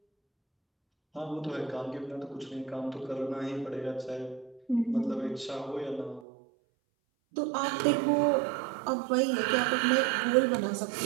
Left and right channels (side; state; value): left; drops out; at 6.2 s